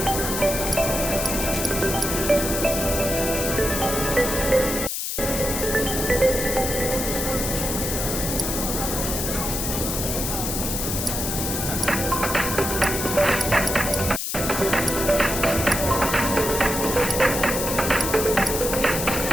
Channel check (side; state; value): left; noise; hiss, 3 dB below the sound